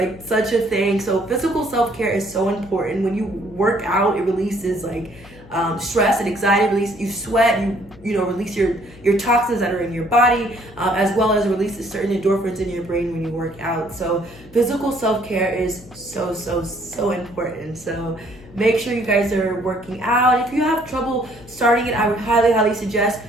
such a thing. So physical self-care is so important. When you work out, it releases stress and anxiety, you sweat, you release your toxins that are in your body, as well as releases certain endorphins in your brain when you work out. So physical self-care is so important. So make sure you guys are working out. If you have trouble starting it, I would highly suggest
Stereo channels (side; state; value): left; noise; hum, 21 dB below the sound